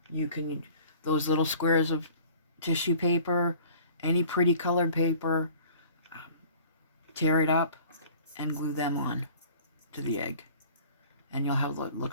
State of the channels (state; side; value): inverted; both; correlation -0.48